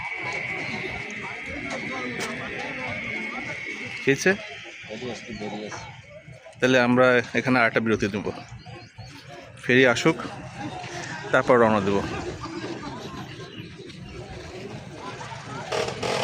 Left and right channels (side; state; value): both; identical; correlation 1.00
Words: খেয়েছে। তাহলে আমরা এখানে আরেকটা বিরতি দেবো, ফেরি আসুক তারপর রওনা দেব।